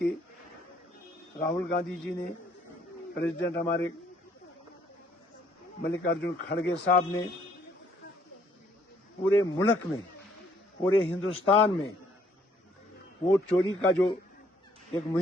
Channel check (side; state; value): both; normal; correlation 0.65